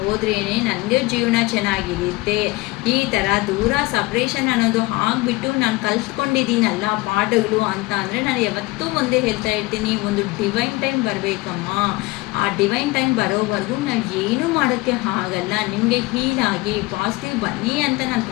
ನನಗೆ ಜೀವನ ಚೆನ್ನಾಗಿರುತ್ತೆ. ಈ ಥರ ದೂರ ಸಪ್ರೇಷನ್ ಅನ್ನೋದು ಆಗಿಬಿಟ್ಟು ನಾನು ಕಲ್ತ್ಕೊಂಡಿದ್ದೀನಲ್ಲ ಪಾಠಗಳು ಅಂತ ಅಂದರೆ ನಾನು ಯಾವತ್ತೂ ಒಂದೇ ಹೇಳ್ತಾ ಇರ್ತೀನಿ, ಒಂದು ಡಿವೈನ್ ಟೈಮ್ ಬರಬೇಕಮ್ಮ. ಆ ಡಿವೈನ್ ಟೈಮ್ ಬರೋವರೆಗೂ ನಾವು ಏನೂ ಮಾಡೋಕ್ಕೆ ಆಗಲ್ಲ. ನಿಮಗೆ ಹೀಲಾಗಿ ಪಾಸಿಟಿವ್ ಬನ್ನಿ ಅಂತ ನಾನು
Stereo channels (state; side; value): quieter; right; 21.9 dB